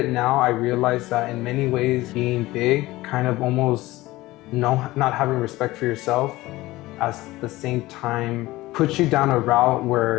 now, I realize that in many ways being big kind of almost not having respect for yourself, at the same time puts you down a route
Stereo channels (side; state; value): right; quieter; 18.5 dB